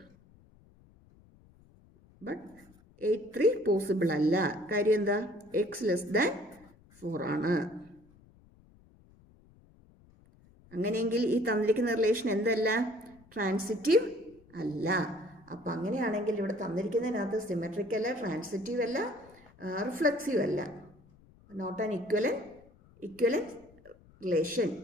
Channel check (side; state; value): left; noise; rumble, 27 dB below the sound